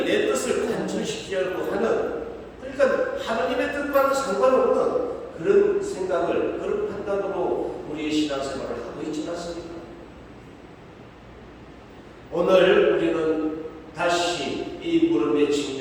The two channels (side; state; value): both; identical; correlation 1.00